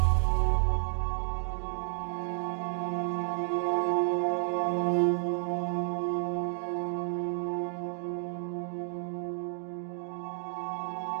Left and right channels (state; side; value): silent; left; digital silence